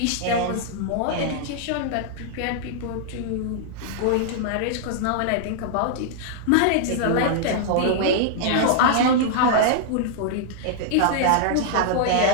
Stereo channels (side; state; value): both; different; correlation -0.01